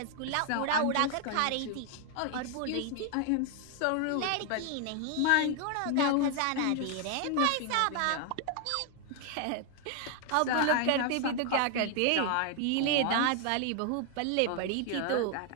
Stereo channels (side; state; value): both; different; correlation 0.00